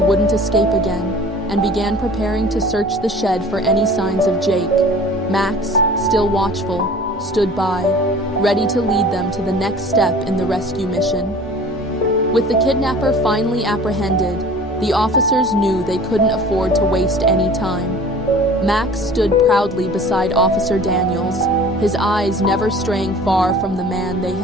escape again, and began preparing to search the shed for any signs of Jake. Max, still watchful, stood by, ready to lead them to the next step in the rescue mission. With the kidnapper finally apprehended, the officers knew they couldn't afford to waste any time. Max stood proudly beside Officer Daniels, his eyes never straying far from the man they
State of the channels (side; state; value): both; normal; correlation 0.45